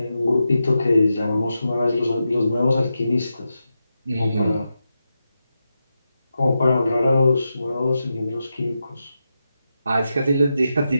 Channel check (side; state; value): both; inverted; correlation -0.88